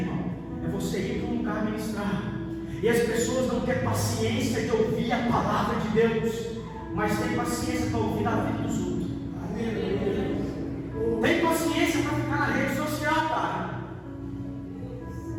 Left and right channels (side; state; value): both; identical; correlation 1.00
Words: é você ir para um lugar ministrar, e as pessoas não têm paciência de ouvir a palavra de Deus. mas tem paciência para ouvir a vida dos outros. Tem paciência para ficar na rede social, cara.